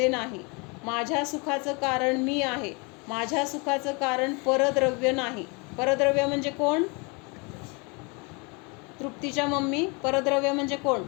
नाही, माझ्या सुखाचं कारण मी आहे, माझ्या सुखाचं कारण परद्रव्य नाही. परद्रव्य म्हणजे कोण? तृप्तीच्या मम्मी, परद्रव्य म्हणजे कोण?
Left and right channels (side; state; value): right; quieter; 30.7 dB